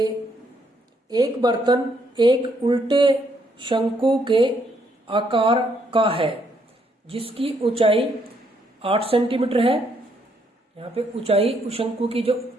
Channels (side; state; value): both; normal; correlation 0.72